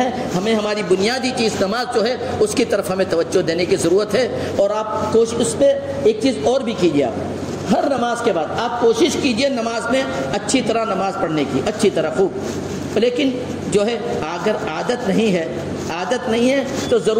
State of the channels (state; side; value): identical; both; correlation 1.00